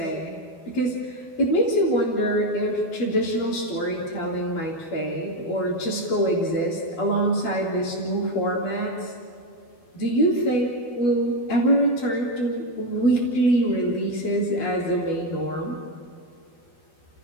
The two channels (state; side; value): late; right; 12 ms